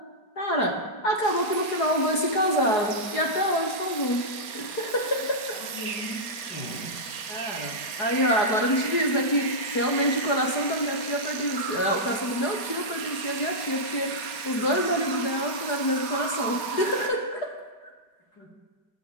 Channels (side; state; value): right; late; 4.8 ms